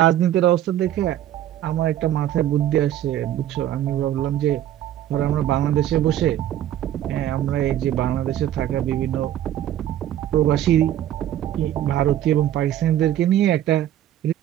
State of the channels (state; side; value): quieter; left; 11.9 dB